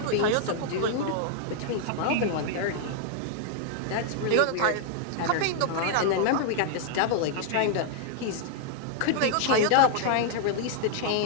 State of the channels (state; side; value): different; both; correlation -0.01